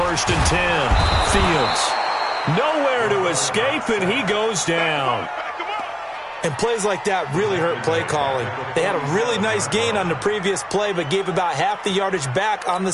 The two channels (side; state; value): both; identical; correlation 1.00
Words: and 10, Fields. Nowhere to escape, and he goes down. And plays like that really hurt play calling. They had a really nice gain on the previous play, but gave about half the yardage back on the